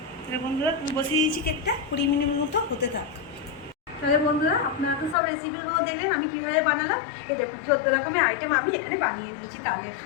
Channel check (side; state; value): right; drops out; at 5.2 s